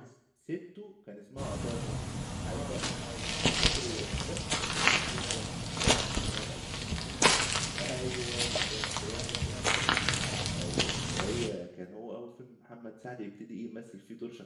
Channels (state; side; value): identical; both; correlation 1.00